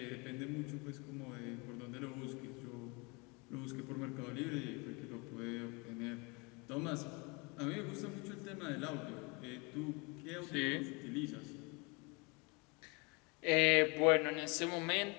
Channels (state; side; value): quieter; right; 30.0 dB